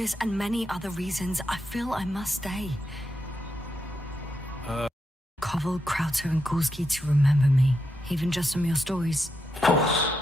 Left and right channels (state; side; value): normal; both; correlation 0.83